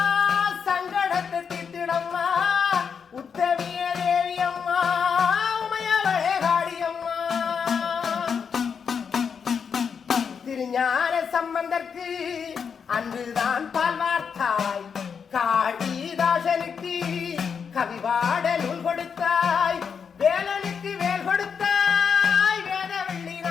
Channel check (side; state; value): right; quieter; 6.5 dB